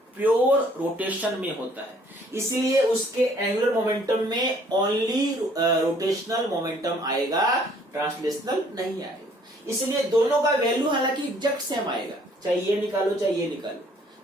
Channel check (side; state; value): both; normal; correlation 0.60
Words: प्योर रोटेशन में होता है, इसलिए उसके एंगुलर मोमेंटम में ओनली रोटेशनल मोमेंटम आएगा, ट्रांसलेशनल नहीं आएगा। इसलिए दोनों का वैल्यू हालांकि एग्जैक्ट सेम आएगा, चाहे ये निकालो चाहे ये निकालो।